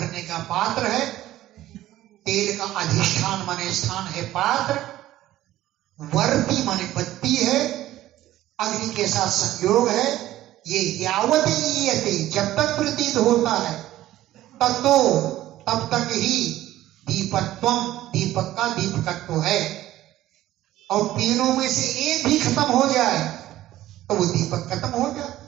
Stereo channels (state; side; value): quieter; left; 14.5 dB